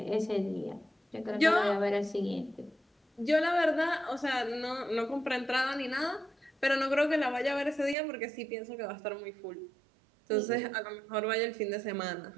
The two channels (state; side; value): drops out; left; at 8.0 s